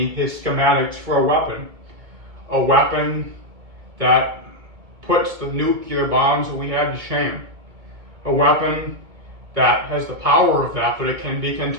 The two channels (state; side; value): late; left; 2.3 ms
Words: his schematics for a weapon that puts the nuclear bombs that we have to shame. A weapon that has the power of that, but it can be